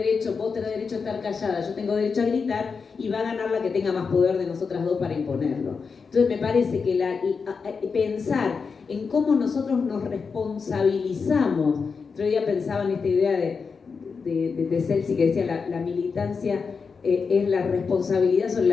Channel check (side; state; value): right; quieter; 5.3 dB